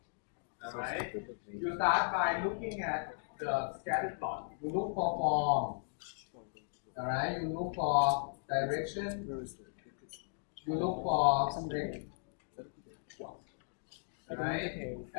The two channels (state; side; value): silent; right; digital silence